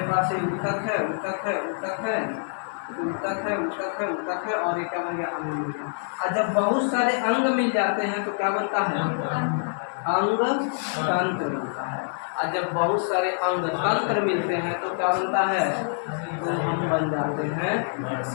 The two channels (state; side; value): silent; right; 61 dB below the other